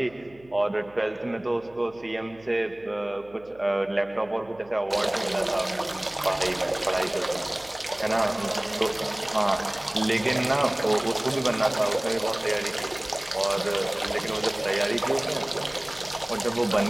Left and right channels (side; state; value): right; noise; hum, 26 dB below the sound